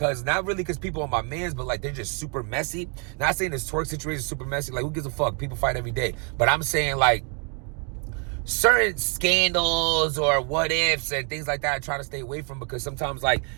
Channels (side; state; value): left; quieter; 38.3 dB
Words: not really because people are my mans, but like they're just super messy. Not saying this Twerk situation is super messy. Like who gives a fuck? People fight every day. But I'm saying like certain scandals or what ifs and things like that I try to stay away from because sometimes like,